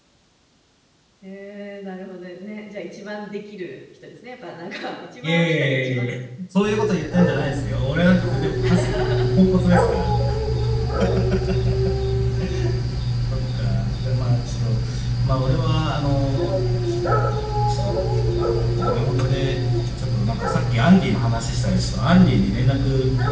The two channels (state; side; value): identical; both; correlation 1.00